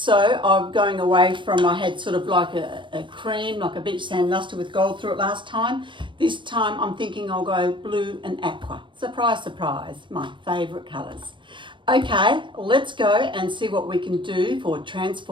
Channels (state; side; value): late; left; 0.24 ms